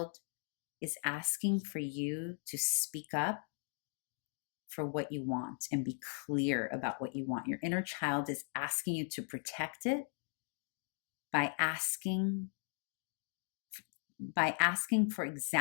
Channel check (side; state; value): right; silent; 52 dB below the other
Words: is asking for you to speak up for what you want and be clear about what you want. Your inner child is asking you to protect it by asking for